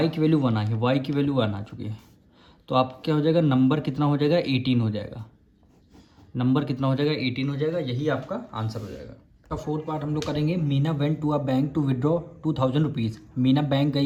की वैल्यू 1 आई है, y की वैल्यू 1 आ चुकी है। तो आप क्या हो जाएगा, नंबर कितना हो जाएगा, 18 हो जाएगा। नंबर कितना हो जाएगा, 18 हो जाएगा, यही आपका आंसर हो जाएगा। का फोर्थ पार्ट हम लोग करेंगे। Meena went to a bank to withdraw 2000 rupees. Meena bank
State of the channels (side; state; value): both; identical; correlation 1.00